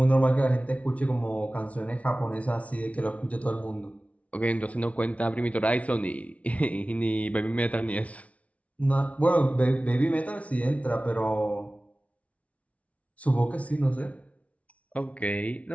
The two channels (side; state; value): right; late; 0.066 ms